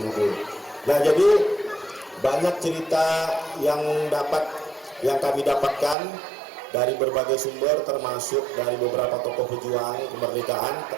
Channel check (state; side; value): drops out; left; at 6.0 s